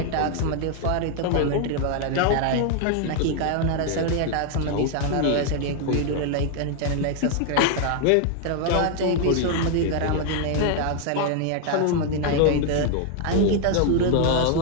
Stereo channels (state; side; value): different; both; correlation 0.00